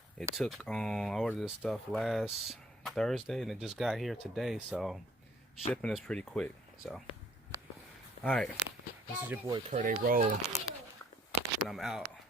It took, I ordered this stuff last Thursday and it just got here today. So shipping is pretty quick. So, all right. This is your boy Kurt A. Roll. And I'm out.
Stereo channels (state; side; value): normal; both; correlation 0.60